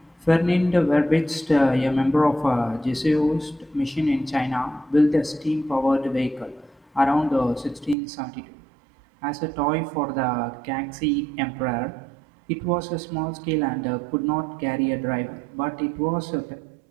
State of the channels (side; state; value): left; drops out; at 8.0 s